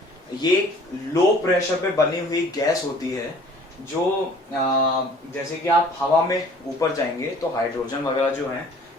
ये लो प्रेशर पे बनी हुई गैस होती है, जो जैसे कि आप हवा में ऊपर जाएंगे तो हाइड्रोजन वगैरह जो है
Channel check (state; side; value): normal; both; correlation 0.52